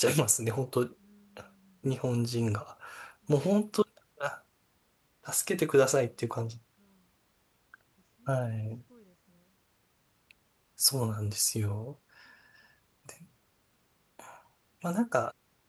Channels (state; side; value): identical; both; correlation 1.00